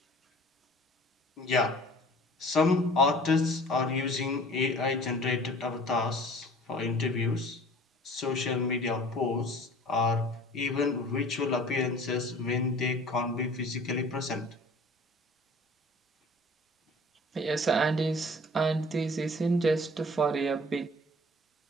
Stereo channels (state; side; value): normal; both; correlation 0.48